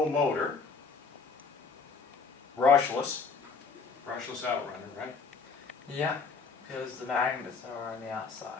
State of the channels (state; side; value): quieter; right; 4.8 dB